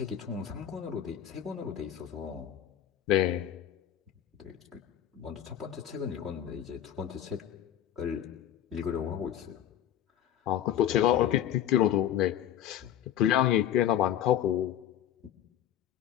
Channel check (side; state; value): right; quieter; 10.8 dB